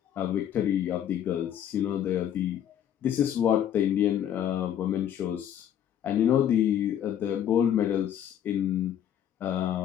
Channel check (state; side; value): quieter; right; 10.1 dB